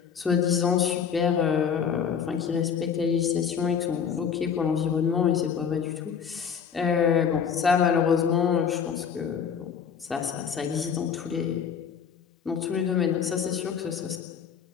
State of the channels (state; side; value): quieter; right; 7.2 dB